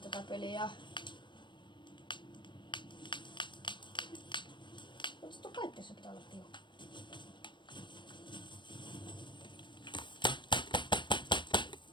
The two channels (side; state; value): right; late; 0.23 ms